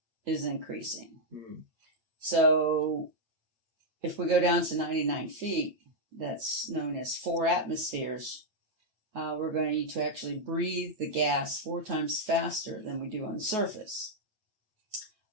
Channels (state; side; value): late; left; 9.3 ms